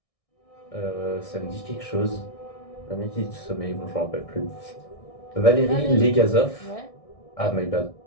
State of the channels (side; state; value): right; late; 1.6 ms